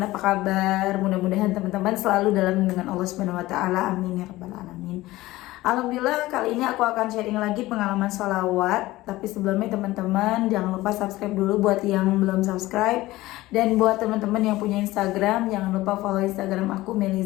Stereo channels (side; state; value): right; quieter; 17.9 dB